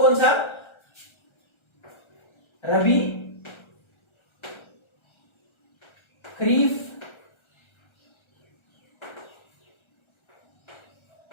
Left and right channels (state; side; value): late; right; 1.3 ms